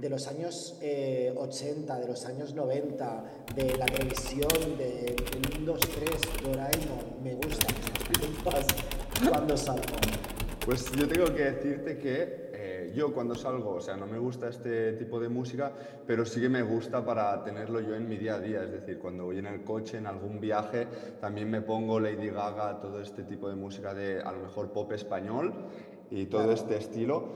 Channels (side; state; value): both; identical; correlation 1.00